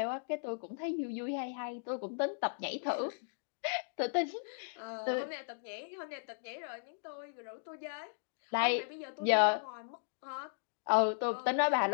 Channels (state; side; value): silent; right; digital silence